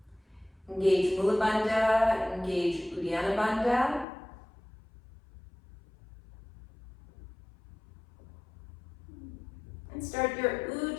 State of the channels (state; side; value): drops out; right; at 4.0 s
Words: Engage Mula Bandha, engage Uddiyana Bandha. And start your